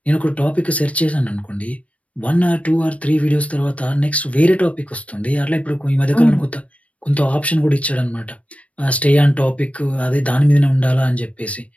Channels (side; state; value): right; late; 0.065 ms